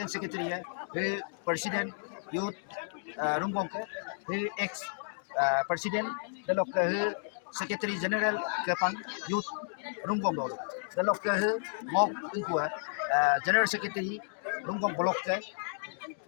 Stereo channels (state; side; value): silent; right; digital silence